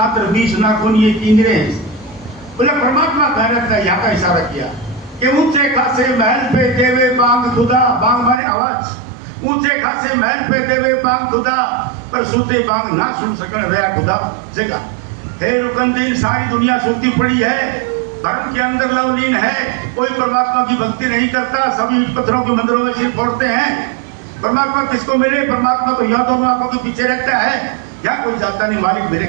और 20 नाखून ये किंगरे हैं। बोले परमात्मा कह रहता है, यहाँ का इशारा किया कि ऊंचे खासे महल पे देवे बांग खुदा। बांग माने आवाज। ऊंचे खासे महल पे देवे बांग खुदा, पर सूते बांग ना सुन सकन रहा खुदा जगह। हे रुकनुद्दीन, सारी दुनिया सूती पड़ी है, भरम के अंदर लवलीन है, कोई परमात्मा की भक्ति नहीं करता, सभी पत्थरों के मंदिरों में सिर फोड़ते हैं। परमात्मा किसको मिले? परमात्मा तो यहाँ दोनों आंखों के पीछे रहता है, यहाँ कोई जाता नहीं, मालिक मेरे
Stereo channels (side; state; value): left; drops out; at 8.4 s